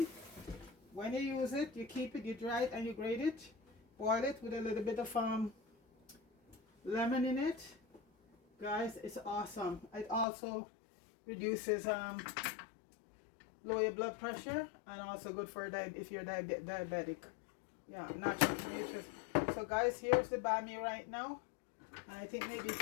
When you use it, you keep it, you dry it, and you grate it, boil it with a little bit of lemon in it. Guys, it's awesome. It also reduces lower your blood pressure, and also good for if you're diabetic. Yeah, natural nutrition. So guys, here's the bammy right now. And I think maybe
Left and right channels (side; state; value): right; drops out; at 10.2 s